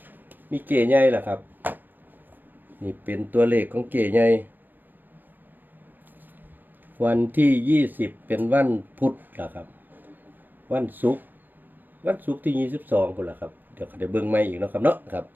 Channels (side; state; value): left; late; 0.091 ms